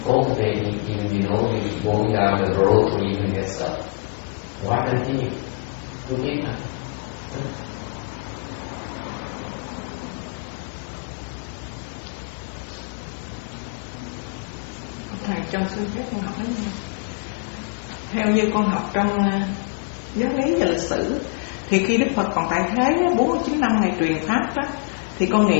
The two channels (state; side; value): quieter; right; 29.6 dB